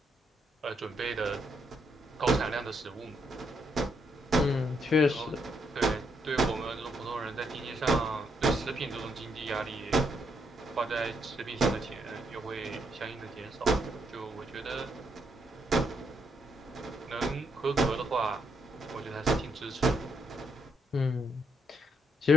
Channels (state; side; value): normal; both; correlation 0.75